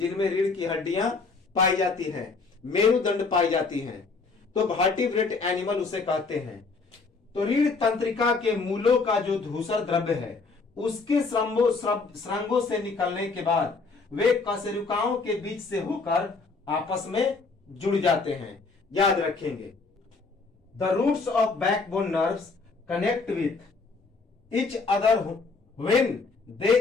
रीढ़ की हड्डियां पाई जाती हैं, मेरुदंड पाई जाती हैं, तो वर्टिब्रेट एनिमल उसे कहते हैं। तो रीढ़ तंत्रिका के मूलों का जो धूसर द्रव्य है उसके श्रृंगों से निकलने के बाद वे कशेरुकाओं के बीच से होकर आपस में जुड़ जाते हैं। याद रखेंगे, the roots of backbone nerves connect with each other when they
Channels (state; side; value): quieter; right; 4.2 dB